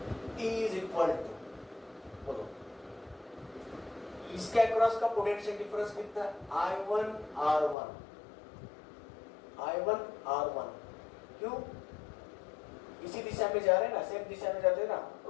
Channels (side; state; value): right; drops out; at 7.8 s